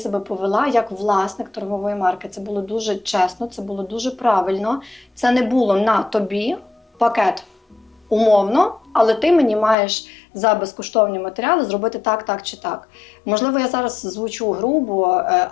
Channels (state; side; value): drops out; right; at 9.8 s